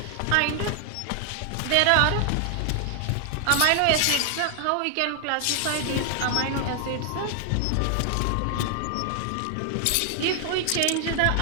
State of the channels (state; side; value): different; both; correlation 0.00